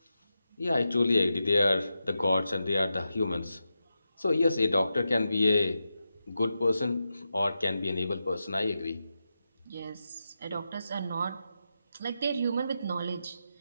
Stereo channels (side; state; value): both; inverted; correlation -0.89